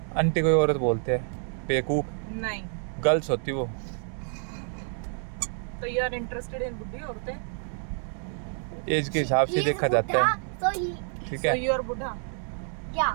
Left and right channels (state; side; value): silent; left; 56 dB below the other